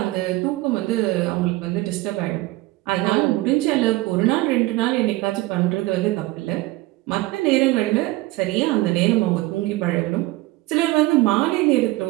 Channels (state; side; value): quieter; left; 19.4 dB